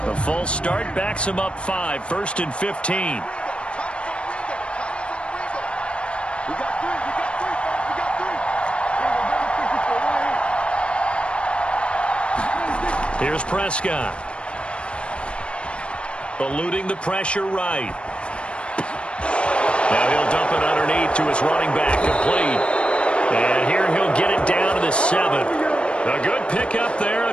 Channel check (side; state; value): right; late; 0.058 ms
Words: The false start backs him up 5, 1st and 15. Here's Prescott. Eluding the pressure right. Now he'll dump it underneath to his running back, complete. And here he'll get it down to the 7. A good pickup there, a